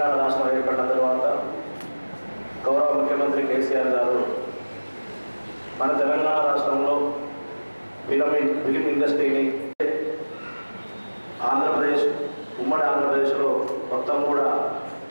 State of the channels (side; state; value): both; inverted; correlation -1.00